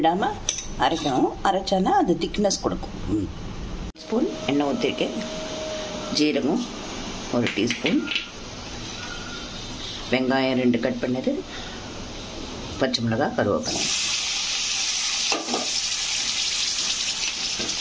அரைக்கணும். அரைச்சானா அது திக்னஸ் கொடுக்கும். ஸ்பூன் எண்ணெய் ஊற்றிருக்கேன். ஜீரகம் 1 டீஸ்பூன், வெங்காயம் 2 கட் பண்ணது, பச்சை மிளகாய், கருவேப்பிலை.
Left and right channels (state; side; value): identical; both; correlation 1.00